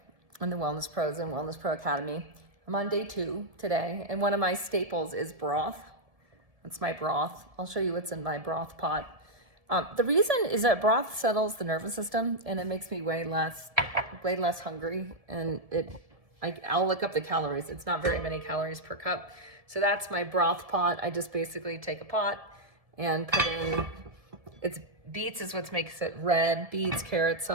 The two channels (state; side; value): late; left; 1.7 ms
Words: and the Wellness Pros and Wellness Pro Academy. I'm on day 2 today, and one of my staples is broth. That's my broth. I'll show you what's in my broth pot. The reason is that broth settles the nervous system, and it makes me way less hungry. And I'll look up the calories. It's not very many calories per cup. So that's my broth pot. I just basically take a pot and put in, beets is what makes it red. Beets, carrots,